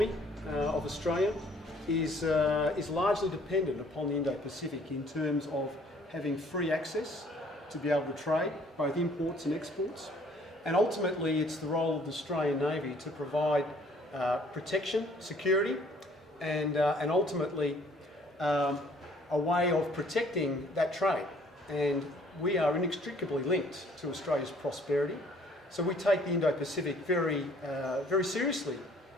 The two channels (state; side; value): normal; both; correlation 0.59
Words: of Australia is largely dependent upon the Indo-Pacific in terms of having free access to be able to trade, both imports and exports. And ultimately it's the role of the Australian Navy to provide protection, security, and ultimately a way of protecting that trade. And we are inextricably linked to Australia's prosperity. So we take the Indo-Pacific very seriously